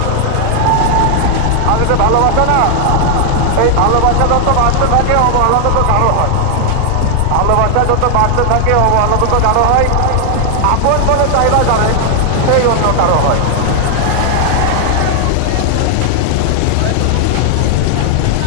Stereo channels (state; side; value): different; both; correlation 0.00